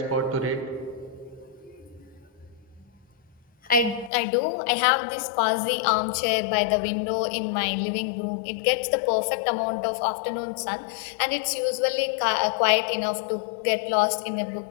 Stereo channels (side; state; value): right; drops out; at 4.1 s